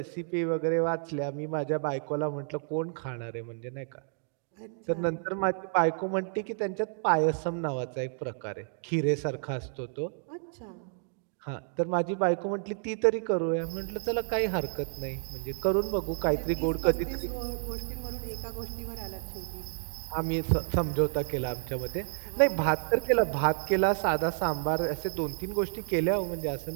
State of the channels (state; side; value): silent; left; digital silence